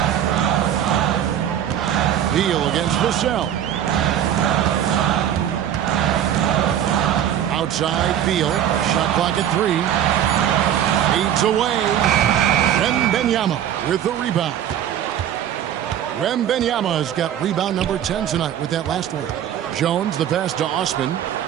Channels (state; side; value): quieter; left; 10.3 dB